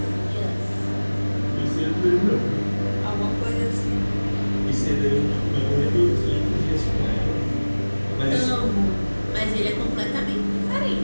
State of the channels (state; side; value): inverted; both; correlation -1.00